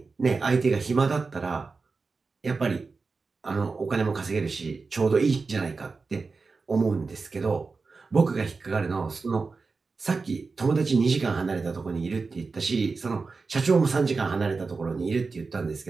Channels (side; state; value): left; quieter; 4.3 dB